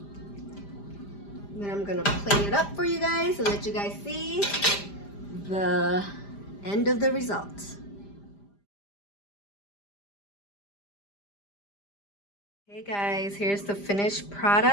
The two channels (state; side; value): late; right; 5.0 ms